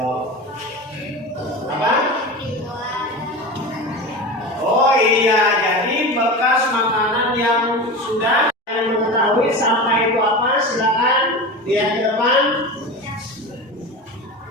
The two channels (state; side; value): normal; both; correlation 0.28